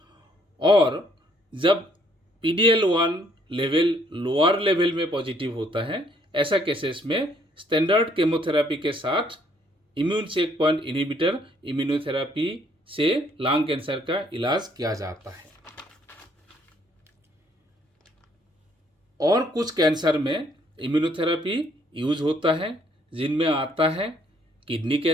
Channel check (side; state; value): both; normal; correlation 0.65